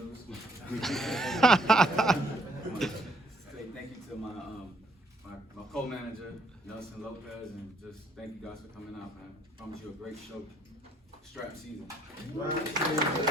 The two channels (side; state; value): both; normal; correlation 0.65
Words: Say thank you to my co-manager, Nelson Lopez, and just thank you guys for coming out, man. I promise you a great show. Strap season. We'll